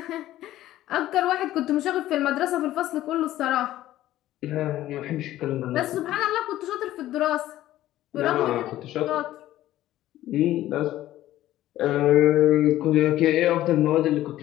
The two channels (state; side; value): quieter; right; 14.2 dB